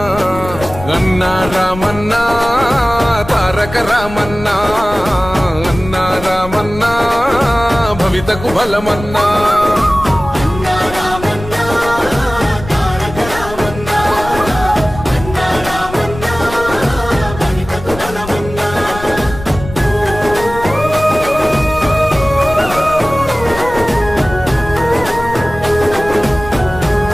అన్నా రామన్నా తారక రామన్నా అన్నా రామన్నా భవితకు బలమన్నా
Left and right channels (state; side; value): noise; left; rumble, 12 dB below the sound